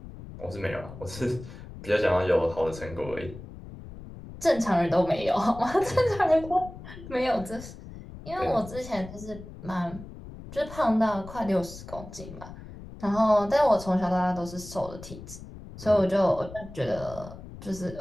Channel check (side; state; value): left; noise; rumble, 14 dB below the sound